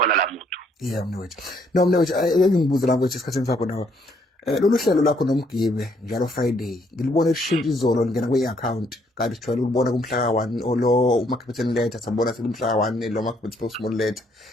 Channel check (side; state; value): both; normal; correlation 0.68